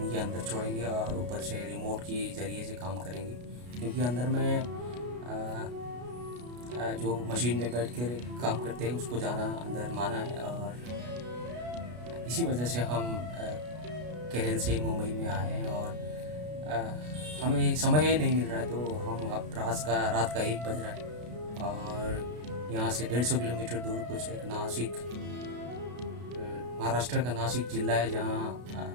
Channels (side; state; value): left; late; 33 ms